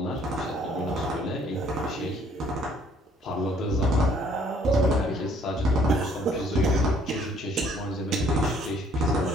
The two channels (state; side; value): normal; both; correlation 0.62